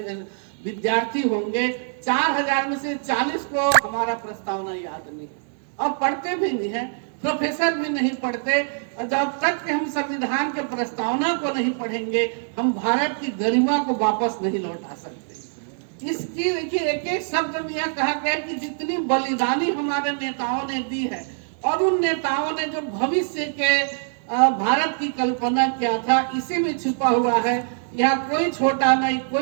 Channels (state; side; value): silent; left; digital silence